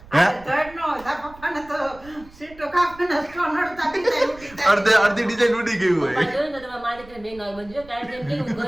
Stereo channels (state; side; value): noise; right; rumble, 21 dB below the sound